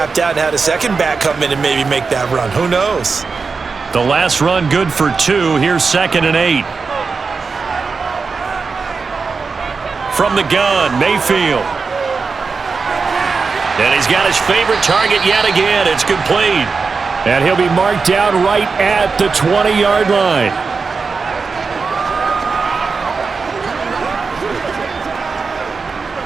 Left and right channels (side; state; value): left; quieter; 4.8 dB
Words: out and had a second back come in and maybe make that run. Who knows? The last run good for 2. Here's 2nd and 8. From the gun, Mayfield. And he's got his favorite target yet again. It's complete. And he'll be marked down right at the 20-yard line.